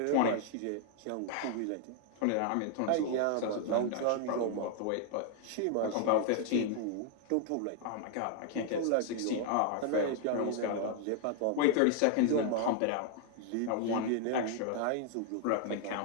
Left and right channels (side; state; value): both; different; correlation 0.00